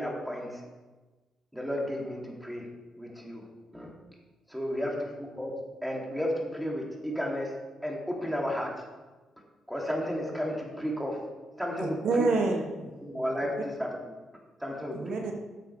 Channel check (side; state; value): both; normal; correlation 0.83